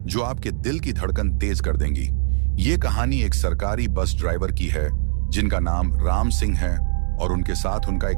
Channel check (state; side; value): silent; left; digital silence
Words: जो आपके दिल की धड़कन तेज कर देंगी। ये कहानी एक सरकारी बस ड्राइवर की है जिनका नाम राम सिंह है और उनके साथ उनका